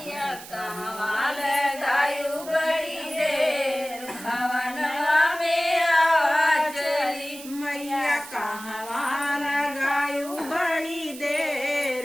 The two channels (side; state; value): right; noise; hiss, 15 dB below the sound